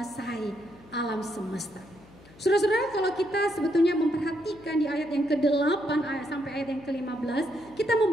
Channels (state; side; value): noise; left; hum, 24 dB below the sound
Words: alam semesta. Saudara-saudara, kalau kita sebetulnya memperhatikan di ayat yang ke-8 sampai ayat yang ke-15, kita